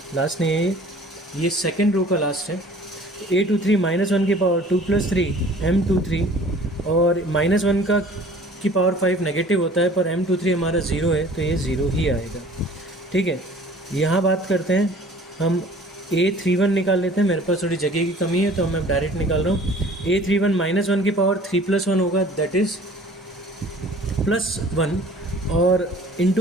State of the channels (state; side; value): normal; both; correlation 0.49